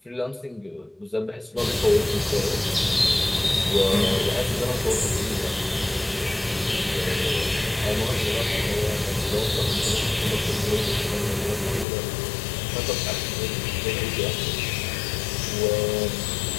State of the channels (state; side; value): drops out; right; at 11.9 s